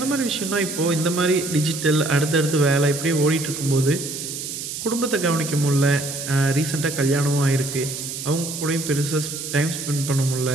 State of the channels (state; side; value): noise; right; hiss, 7 dB below the sound